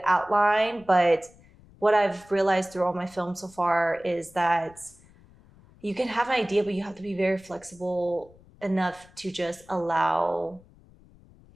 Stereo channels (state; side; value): noise; left; rumble, 26 dB below the sound